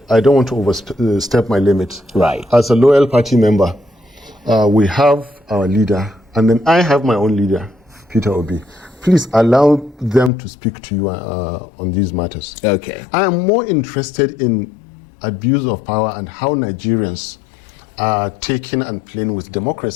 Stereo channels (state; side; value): drops out; right; at 10.3 s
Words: I don't want to overstep my limits. Right. As a loyal party member, we have our leader, and then I have my own leader, Peter Obi. Please allow them to speak to you on these matters. Okay. I am more interested in abuse of power and how Nigerians are taking and playing with